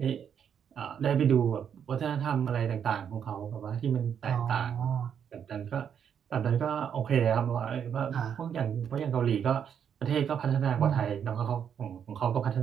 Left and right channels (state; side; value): quieter; left; 8.1 dB